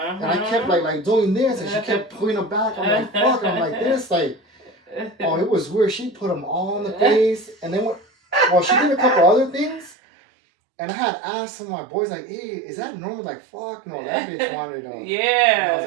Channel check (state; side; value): drops out; left; at 10.0 s